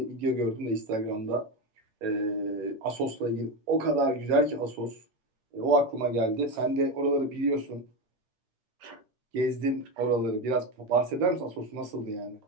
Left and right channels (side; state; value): left; late; 8.7 ms